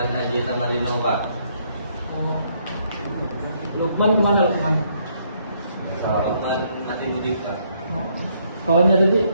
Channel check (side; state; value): both; inverted; correlation -0.70